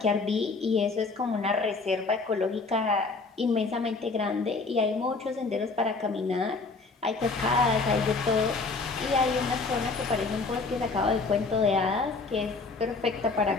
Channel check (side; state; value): right; quieter; 4.0 dB